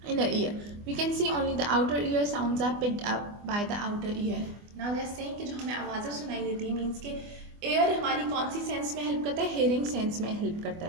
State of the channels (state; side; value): late; left; 24 ms